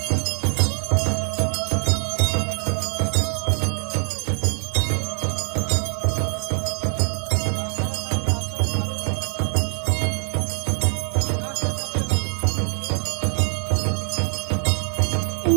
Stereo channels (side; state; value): left; silent; digital silence